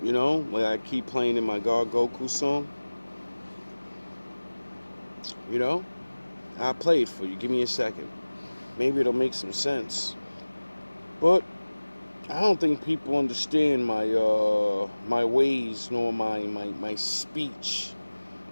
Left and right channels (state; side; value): inverted; both; correlation -1.00